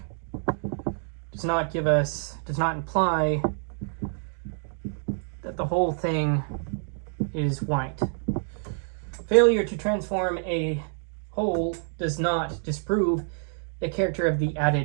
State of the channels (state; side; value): silent; left; 60 dB below the other